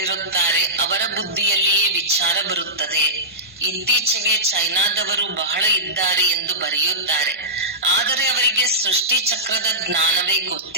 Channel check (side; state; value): both; normal; correlation -0.16